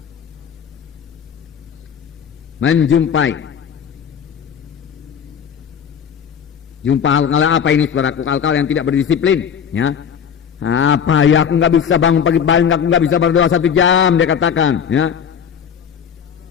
jumpa hal-hal apa ini, saudaraku? Hal-hal yang tidak berdisiplin, ya. Apa ya, aku nggak bisa bangun pagi-pagi, aku nggak bisa berdoa 1 jam, dia katakan, ya.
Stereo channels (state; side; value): quieter; right; 7.8 dB